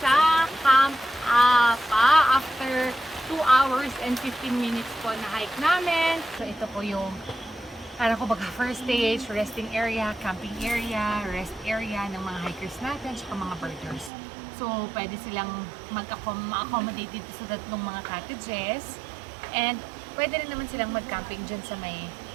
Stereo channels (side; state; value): left; drops out; at 14.1 s